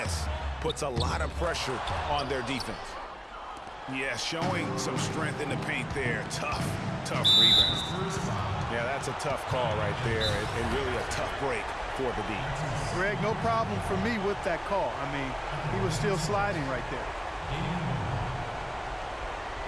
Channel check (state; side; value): identical; both; correlation 1.00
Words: puts a lot of pressure on their defense. Yeah, showing some strength in the paint there. Tough rebound. Yeah, that's a tough call right there, and really a tough break for the D. Greg, no problem for me with that call. I mean, he was still sliding right there.